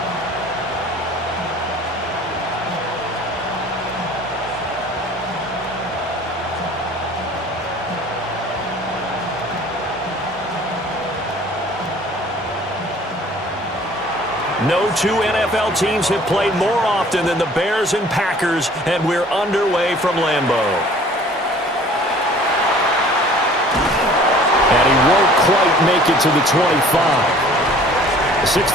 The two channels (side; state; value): both; normal; correlation 0.51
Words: No two NFL teams have played more often than the Bears and Packers, and we're underway from Lambeau. And he won't quite make it to the 25.